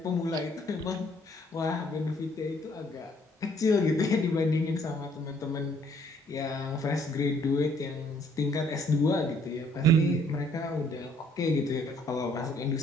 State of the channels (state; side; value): normal; both; correlation 0.63